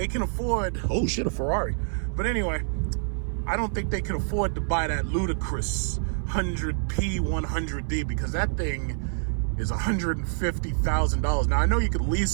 can afford, oh shit, a Ferrari. But anyway, I don't think they can afford to buy that ludicrous 100P 100D because that thing is $150,000. Now, I know you could lease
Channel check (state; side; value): silent; left; 58 dB below the other